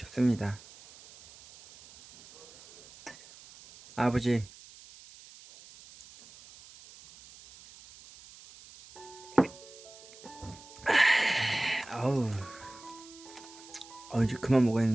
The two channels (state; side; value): noise; right; hiss, 20 dB below the sound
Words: 아버지, 아우, 이제 그만